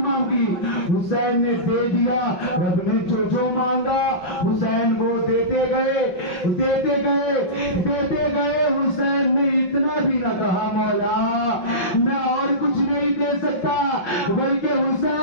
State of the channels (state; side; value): late; right; 5.7 ms